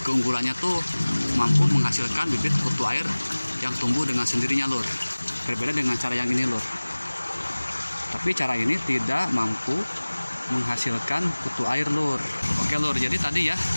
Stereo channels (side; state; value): both; inverted; correlation -1.00